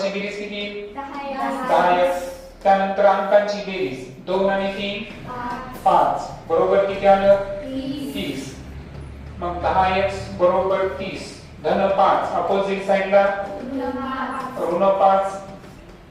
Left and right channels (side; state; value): both; identical; correlation 1.00